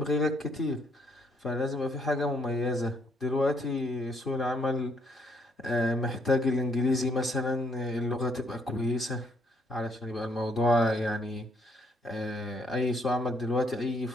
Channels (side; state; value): both; normal; correlation 0.70